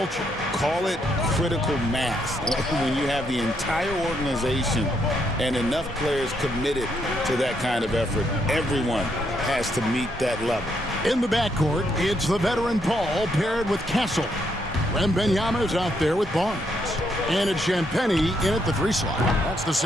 Call it critical mass. When you have the entire organization and enough players committed to that kind of effort, everyone has to meet that level. In the backcourt, it's the veteran Paul paired with Castle. Wembanyama's out there with Barnes. And it's Champagnie in at the 3 slot. That's the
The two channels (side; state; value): both; normal; correlation 0.75